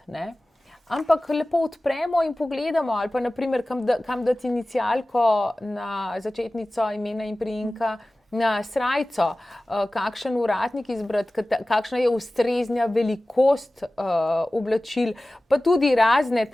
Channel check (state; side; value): normal; both; correlation 0.97